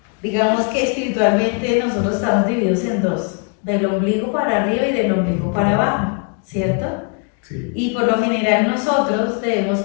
digamos que espiritualmente nosotros estamos divididos en dos, del ombligo para arriba y del ombligo para abajo, ¿cierto? Sí. Y por lo general nosotros debemos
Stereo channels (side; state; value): right; quieter; 37.0 dB